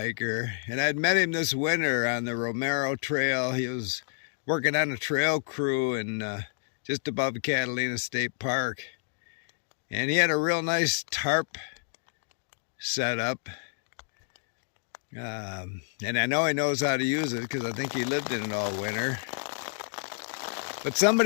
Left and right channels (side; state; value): right; silent; digital silence